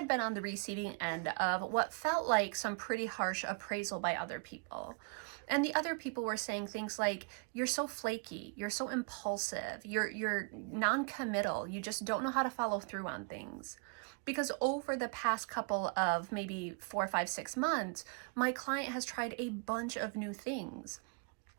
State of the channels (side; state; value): left; quieter; 36.5 dB